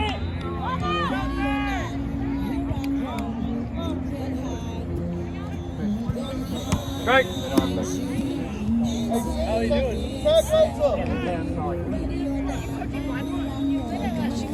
Right. How you doing?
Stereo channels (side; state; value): both; identical; correlation 1.00